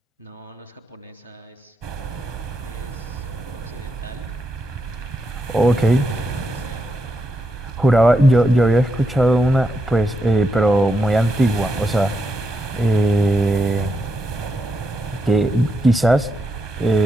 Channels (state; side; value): normal; both; correlation 0.83